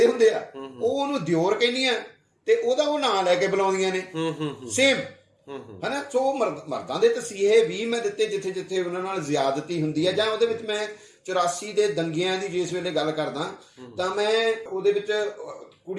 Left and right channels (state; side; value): identical; both; correlation 1.00